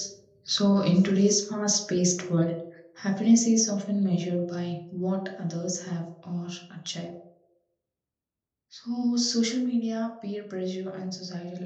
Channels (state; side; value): identical; both; correlation 1.00